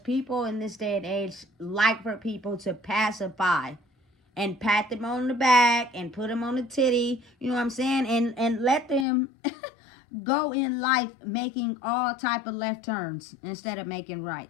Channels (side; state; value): right; drops out; at 9.1 s